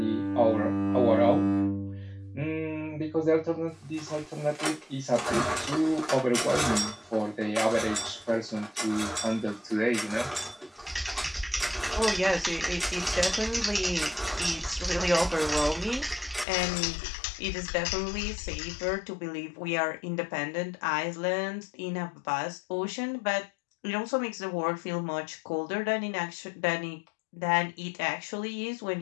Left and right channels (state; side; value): drops out; right; at 16.4 s